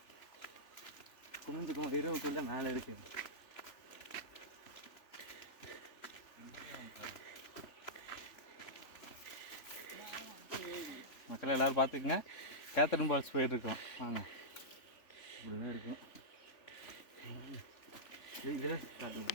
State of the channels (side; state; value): right; late; 3.4 ms